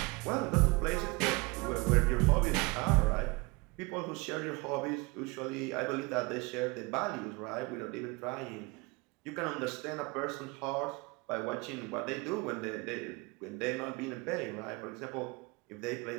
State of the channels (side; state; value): left; quieter; 26.3 dB